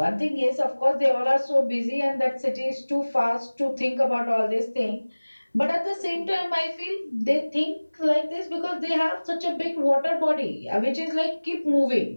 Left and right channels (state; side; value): inverted; both; correlation -1.00